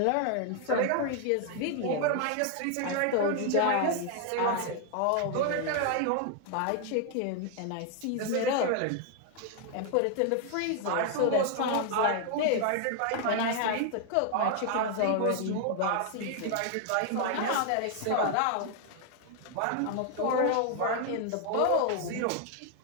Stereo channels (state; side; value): different; both; correlation 0.00